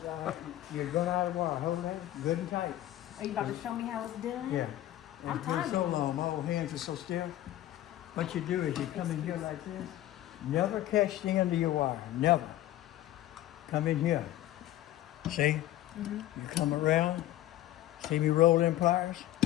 You run out of wire. Hold that good and tight. Are you about to show me how it's done? Yeah. I'm And it's been so timing. long, my old hands are so stiff. What you do is you come in here like this. Never catch the end of your wire. Never. Come in here. See? You come around. See me roll in pliers?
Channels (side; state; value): right; quieter; 14.1 dB